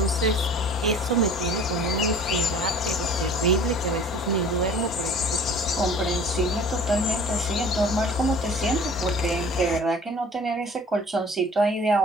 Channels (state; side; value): normal; both; correlation 0.47